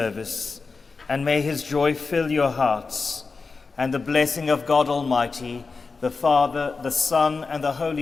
and may his joy fill your hearts. And the blessing of God Almighty, the Father, the Son, and the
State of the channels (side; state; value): right; quieter; 4.4 dB